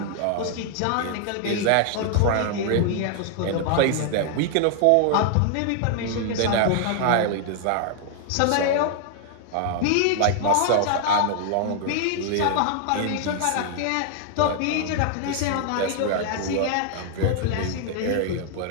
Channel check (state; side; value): different; both; correlation 0.00